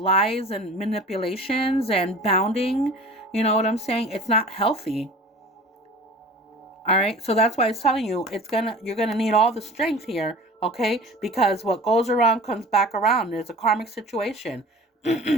and manipulations and bounding? You know what I'm saying? It's not healthy. All right. So that's why it's telling you you're going to need all the strength here. Okay. Because what goes around comes back around. There's a karmic situation.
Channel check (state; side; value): normal; both; correlation 0.41